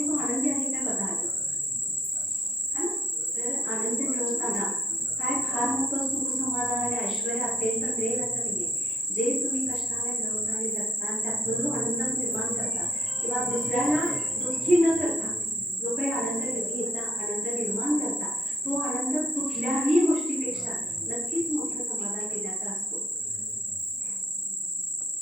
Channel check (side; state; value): both; normal; correlation 0.69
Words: तो आनंदी आहे का बघा है ना. तर आनंद मिळवताना काय फार मोठं सुख समाधान आणि ऐश्वर्य असेल तर मिळेल असं नाही आहे. जे तुम्ही कष्टाने मिळवता आणि जगता त्यातून जो आनंद निर्माण करता किंवा दुसऱ्याला दुःखी न करता जो काही आनंद घेता, आनंद निर्माण करता, तो आनंद कुठल्याही गोष्टीपेक्षा नक्कीच मोठं समाधान देण्याचा असतो.